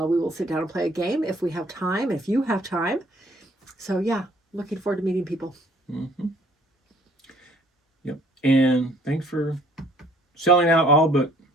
will sit down and play a game if we have time, if you have time. So yeah, looking forward to meeting people. Yep. And thanks for selling out all but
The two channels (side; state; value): both; normal; correlation 0.59